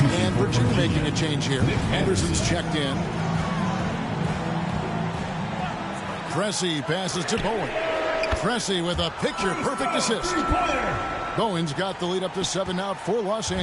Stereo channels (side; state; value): both; identical; correlation 1.00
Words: And Virginia making a change here. Anderson's checked in. Pressey passes to Bowen. Pressey with a picture-perfect assist. Bowen's got the lead up to 7 now for Los